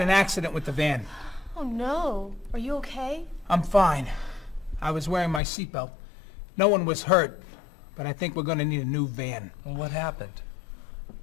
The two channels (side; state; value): right; drops out; at 5.4 s